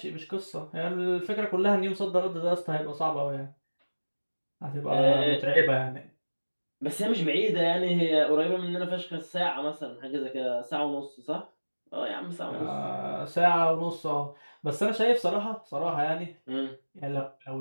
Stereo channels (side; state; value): both; inverted; correlation -1.00